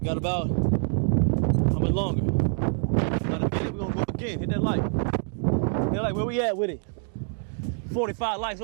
got about, how much longer? About a minute, we're gonna go again. Hit that like. Hit that like, where we at with it? 45 likes,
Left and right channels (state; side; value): silent; left; 58 dB below the other